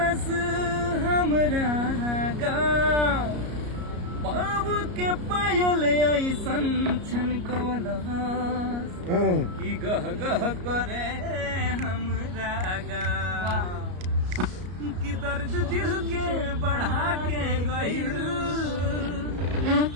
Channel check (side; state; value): left; late; 33 ms